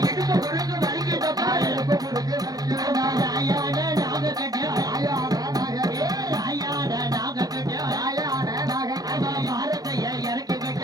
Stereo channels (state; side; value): late; left; 0.19 ms